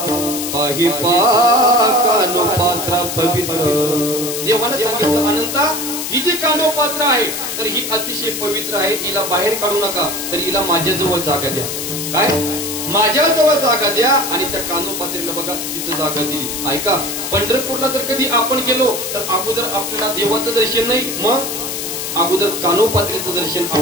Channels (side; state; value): left; noise; hiss, 5 dB below the sound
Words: पाहि कानो पात्रा पवित्र. देवानं सांगितलं अनंता ही जी कानोपात्र आहे तर ही अतिशय पवित्र आहे, हिला बाहेर काढू नका, तर हिला माझ्याजवळ जागा द्या. काय माझ्याजवळ जागा द्या. आणि त्या कानोपात्रीला बघा तिथं जागा दिली. ऐका, पंढरपूरला जर कधी आपण गेलो तर अगोदर आपल्याला देवाचं दर्शन नाही, मग अगोदर कानोपात्रीचं दर्शन